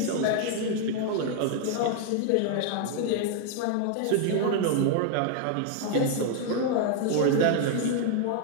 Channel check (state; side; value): different; both; correlation 0.00